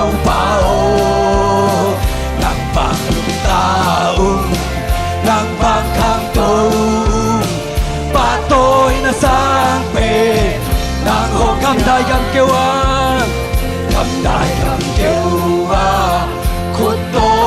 bao nàng vàng ta nàng vàng khang tu ba tôi là sang về nàng hồng cầm đại cầm kêu khút tô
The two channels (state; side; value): identical; both; correlation 1.00